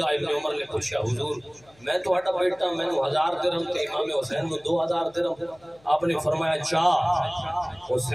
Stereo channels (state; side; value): noise; left; hum, 30 dB below the sound